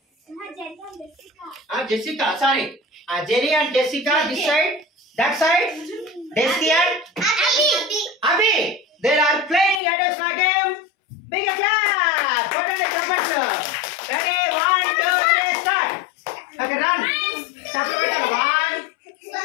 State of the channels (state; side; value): drops out; right; at 9.8 s